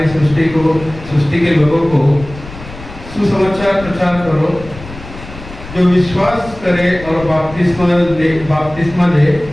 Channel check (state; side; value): noise; left; rumble, 15 dB below the sound